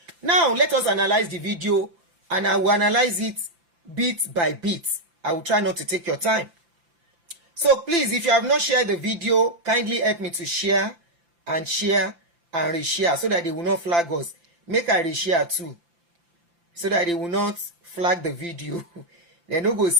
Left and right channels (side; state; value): left; late; 5.8 ms